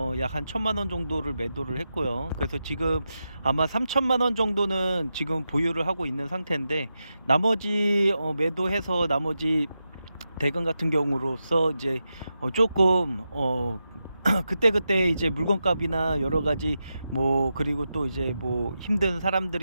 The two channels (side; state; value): both; inverted; correlation -0.89